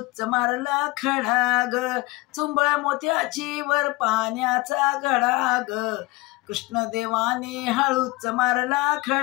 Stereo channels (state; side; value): quieter; right; 21.9 dB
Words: मारला खडा ग। चुंबळ मोत्याची वर पाण्याचा घडा ग, कृष्णदेवाने हळूच मारला